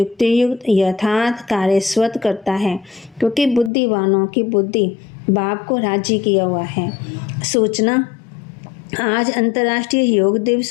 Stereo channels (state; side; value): drops out; right; at 3.7 s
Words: यथार्थ कार्य स्वतः करता है, क्योंकि बुद्धिवानों की बुद्धि बाप को राजी किया हुआ है। सूचना, आज अंतर्राष्ट्रीय योग